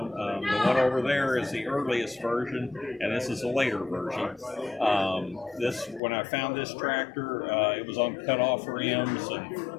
The one over there is the earliest version, and this is a later version. When I found this tractor, it was on cut-off rims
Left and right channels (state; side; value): drops out; right; at 6.0 s